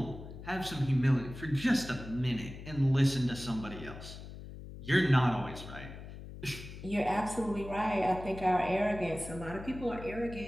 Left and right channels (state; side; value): noise; left; hum, 12 dB below the sound